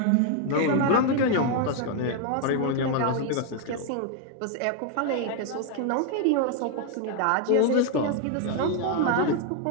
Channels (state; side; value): different; both; correlation 0.01